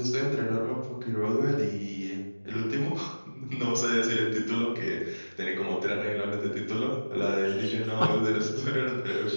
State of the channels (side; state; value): both; inverted; correlation -1.00